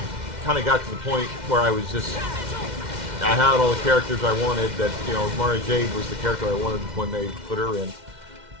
kind of got to the point where I was just, I had all the characters I wanted, that, you know, Mara Jade was the character I wanted when they put her in,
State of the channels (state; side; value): late; left; 2.1 ms